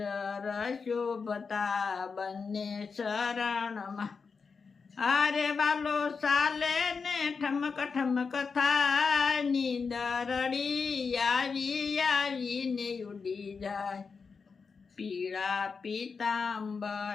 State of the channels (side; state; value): right; quieter; 5.2 dB